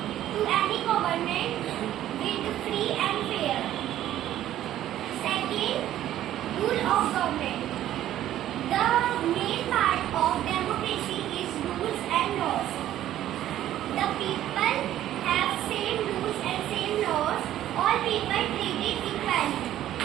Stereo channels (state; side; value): quieter; left; 12.6 dB